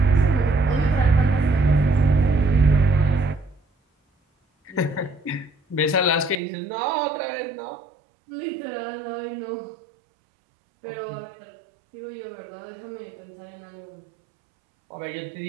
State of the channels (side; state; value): left; drops out; at 6.4 s